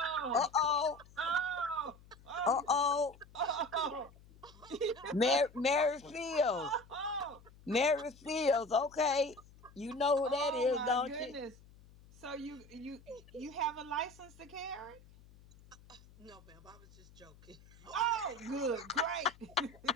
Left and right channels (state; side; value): noise; left; hum, 23 dB below the sound